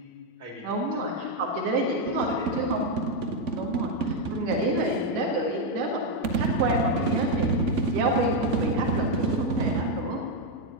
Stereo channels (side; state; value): left; late; 3.5 ms